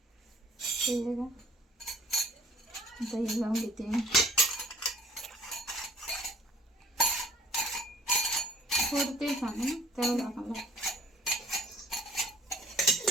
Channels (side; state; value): both; normal; correlation 0.53